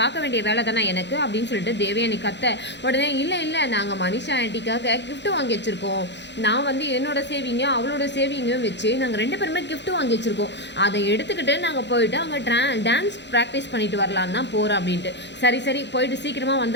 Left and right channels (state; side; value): late; right; 0.51 ms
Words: வேண்டிய வேலை தானே எனக்கு அப்படின்னு சொல்லிட்டு தேவயானி கத்த. உடனே இல்லை நாங்கள் மனிஷா ஆண்டிக்காக கிஃப்ட் வாங்கி வச்சுருக்கோம், நான் வந்து என்னோட சேவிங்கும் அவளோட சேவிங்கும் வச்சு நாங்கள் 2 பேருமே கிஃப்ட் வாங்கி வச்சுருக்கோம், அதை எடுத்துக்கிட்டு நாங்கள் போயிட்டு அங்கே டான்ஸ் ப்ராக்டிஸ் பண்ணிட்டு வரலான்னு தான் போகிறோம் அப்படின்ட்டு. சரி போயிட்டு சீக்கிரமாக